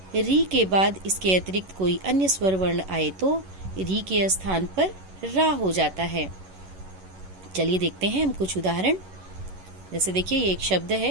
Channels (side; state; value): left; late; 11 ms